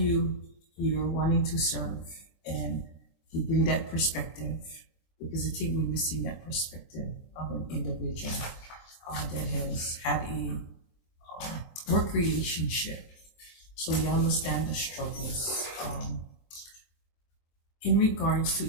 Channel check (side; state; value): right; late; 23 ms